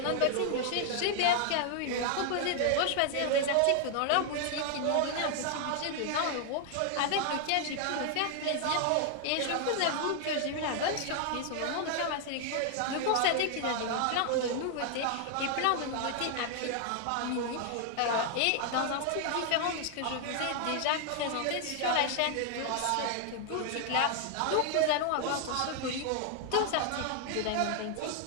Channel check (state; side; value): different; both; correlation 0.00